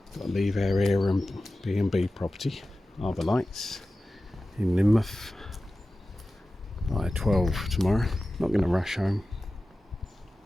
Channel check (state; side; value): normal; both; correlation 0.95